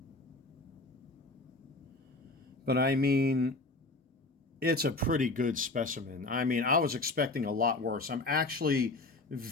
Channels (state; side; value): quieter; right; 3.1 dB